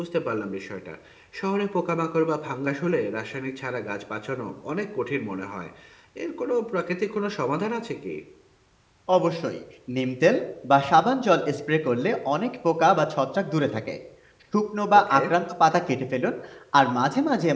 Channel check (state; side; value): identical; both; correlation 1.00